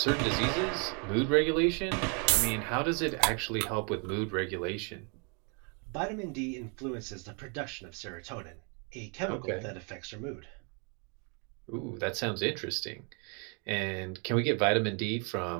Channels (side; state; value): left; quieter; 35.8 dB